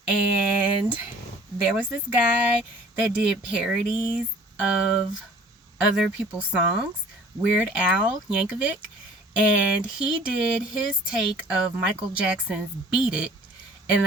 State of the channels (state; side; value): normal; both; correlation 0.50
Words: and there was this guy that did parodies of other people's songs, Weird Al Yankovic, and he did his take of Michael Jackson's Beat It, and